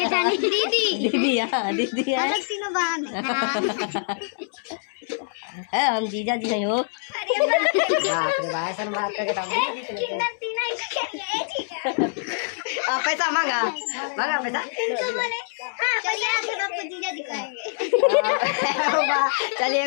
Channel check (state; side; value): silent; right; 62 dB below the other